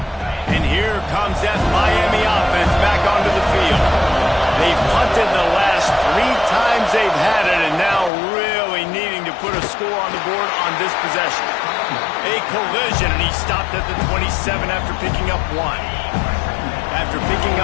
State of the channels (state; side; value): drops out; right; at 8.1 s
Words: And here comes that Miami offense back onto the field. They've punted the last 3 times they've had it, and now really needing to put a score on the board on this possession. A collision, and he stopped at the 27 after picking up 1. After picking